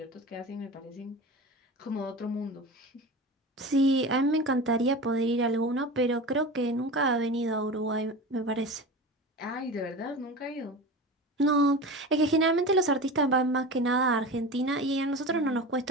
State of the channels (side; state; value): both; normal; correlation 0.31